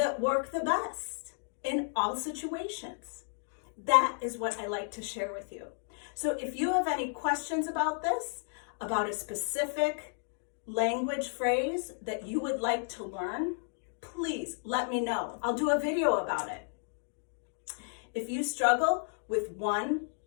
work the best in all situations? That is what I like to share with you. So if you have any questions about this, about a specific language phrase that you would like to learn, please let me know. I'll do a video about it. If you struggle with one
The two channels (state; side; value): silent; right; digital silence